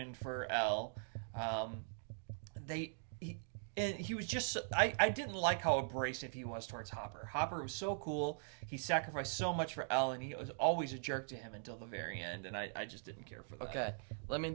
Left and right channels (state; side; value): silent; left; digital silence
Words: for Elle. He was just I didn't like how abrasive he was towards Hopper. Hopper was so cool. He sacrificed so much for Elle, and he was always a jerk to him until the very end, and I just didn't care for that. Okay, let me